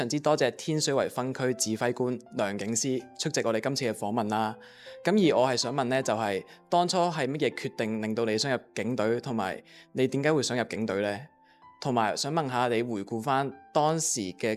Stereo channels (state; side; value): identical; both; correlation 1.00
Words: 之多謝天水圍分區指揮官梁景思出席我哋今次嘅訪問啦。咁而我係想問呢，就係當初係乜嘢決定令到你想入警隊，同埋你點解會想入警隊呢？同埋想問下你回顧翻當時